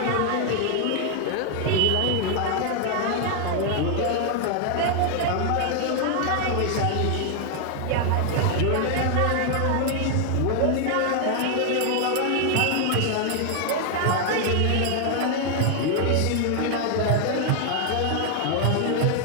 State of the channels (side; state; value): both; different; correlation 0.00